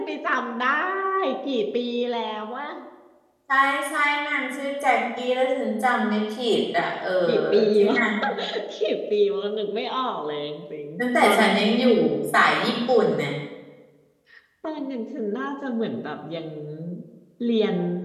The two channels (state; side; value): identical; both; correlation 1.00